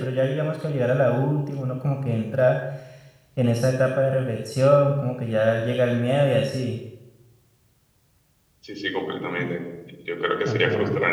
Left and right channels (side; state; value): both; identical; correlation 1.00